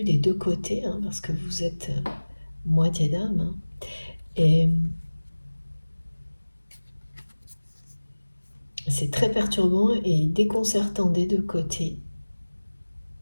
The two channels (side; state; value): both; inverted; correlation -1.00